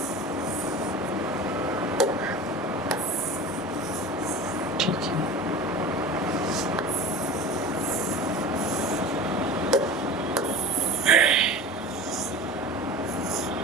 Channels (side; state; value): both; normal; correlation 0.34